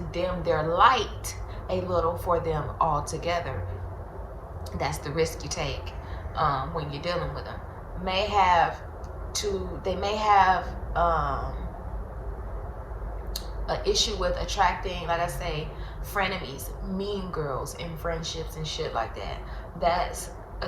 dim their light a little for them altogether. That's the risk you take when you're dealing with them. They may have an issue with attracting, like I say, frenemies, mean girls in friendships and shit like that. That's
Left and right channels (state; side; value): identical; both; correlation 1.00